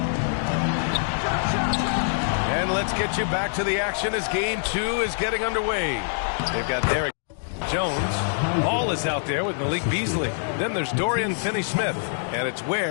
And let's get you back to the action as game 2 is getting underway. They've got Derek Jones. Ball is out there with Malik Beasley. Then there's Dorian Finney-Smith. And it's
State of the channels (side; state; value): right; silent; digital silence